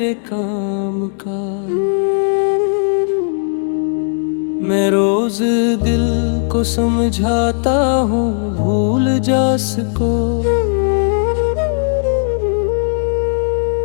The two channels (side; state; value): right; silent; 66 dB below the other